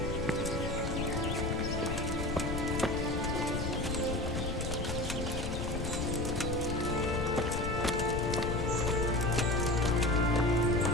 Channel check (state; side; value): noise; left; rumble, 3 dB below the sound